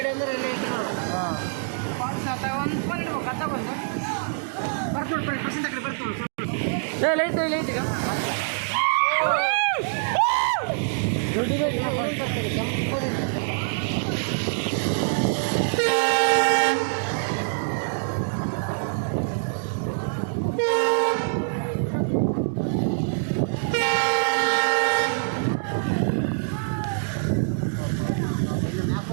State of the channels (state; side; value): silent; left; digital silence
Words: ಅಂದ್ರೆ ಎಲ್ಲ ಐತಿ ನೋಡು. ಫಾಲ್ಸ್ ಆತ ಒಂದು ಫೋನ್ ಇಡ್ಬೇಕು ಅತ್ತ ಬಂದು ಬರ್ತು ಪರ್ಸೆಂಟ್ ಕಡೆ ಬರ್ತು ಇಲ್ಲ ಐತಿ ಈಗ